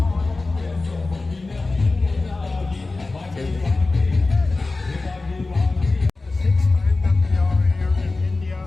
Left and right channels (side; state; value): right; quieter; 3.4 dB